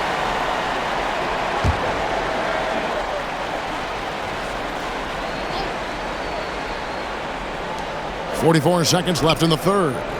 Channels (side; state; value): both; identical; correlation 1.00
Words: .44 seconds left in the third.